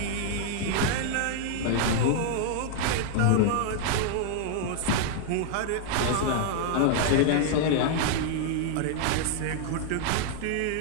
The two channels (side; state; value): both; different; correlation 0.00